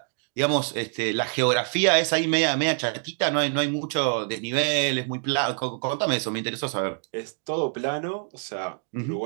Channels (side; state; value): left; silent; 61 dB below the other